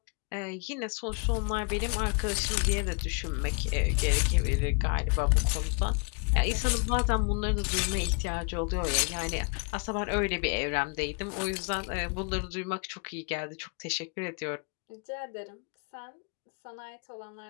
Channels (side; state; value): right; quieter; 35.5 dB